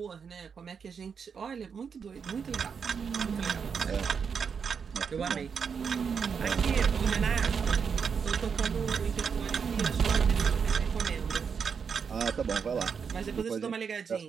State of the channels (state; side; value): quieter; left; 6.3 dB